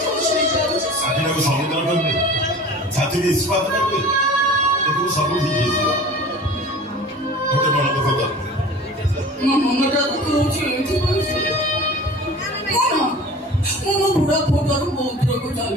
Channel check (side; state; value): both; normal; correlation 0.40